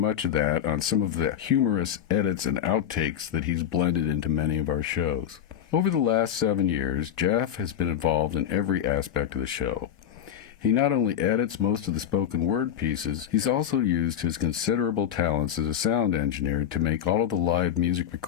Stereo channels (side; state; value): right; quieter; 9.7 dB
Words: of that on some of the humorous edits and outtakes that he's blended into many of our shows. Over the last 7 years, Jeff has been involved in every aspect of the show. He not only edits most of the spoken word pieces, he's also used his considerable talents as a sound engineer to make all of the live music